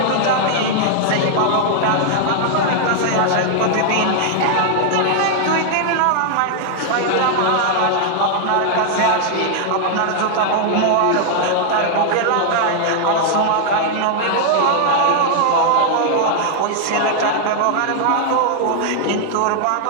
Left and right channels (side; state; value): both; different; correlation 0.00